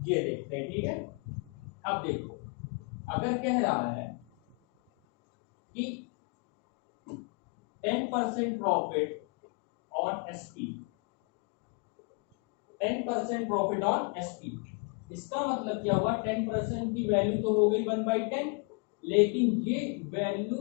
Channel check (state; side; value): quieter; right; 34.7 dB